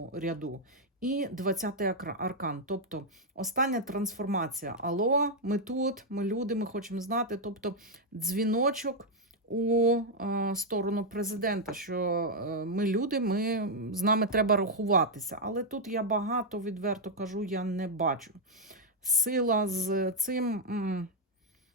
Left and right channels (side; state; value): both; normal; correlation -0.01